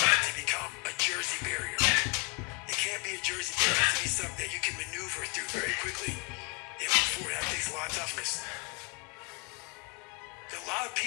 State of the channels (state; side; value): quieter; right; 29.9 dB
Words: to become a Jersey barrier. It can't be a Jersey barrier. It has to be something that you can maneuver through very quickly and move forward. That takes a lot of toughness. A lot of